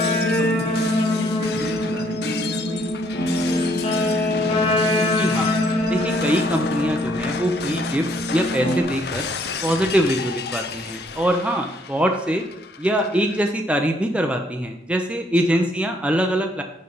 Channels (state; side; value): normal; both; correlation 0.67